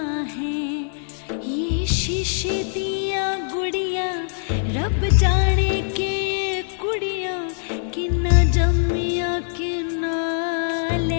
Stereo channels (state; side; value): silent; right; digital silence